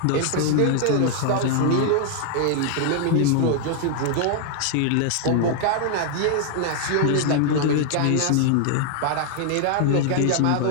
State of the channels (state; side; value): different; both; correlation 0.00